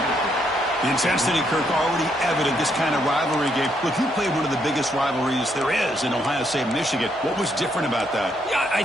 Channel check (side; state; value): both; normal; correlation 0.74